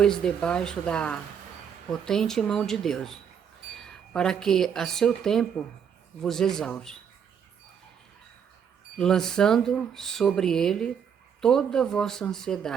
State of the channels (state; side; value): quieter; left; 7.7 dB